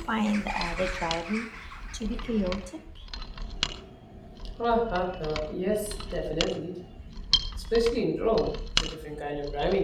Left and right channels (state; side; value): identical; both; correlation 1.00